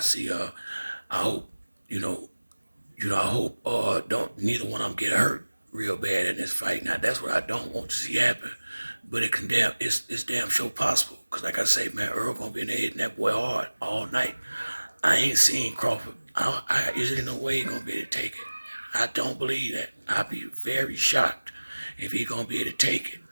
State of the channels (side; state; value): both; inverted; correlation -1.00